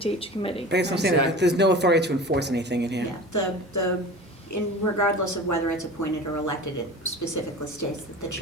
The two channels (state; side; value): normal; both; correlation 0.36